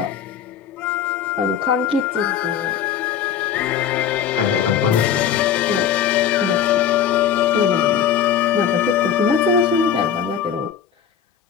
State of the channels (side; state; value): right; quieter; 8.5 dB